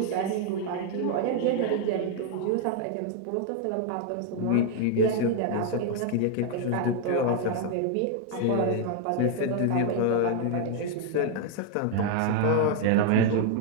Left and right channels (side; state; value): both; different; correlation 0.00